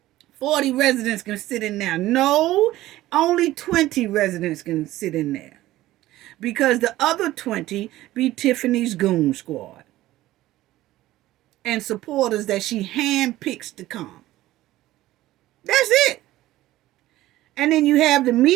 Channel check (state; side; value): quieter; left; 15.8 dB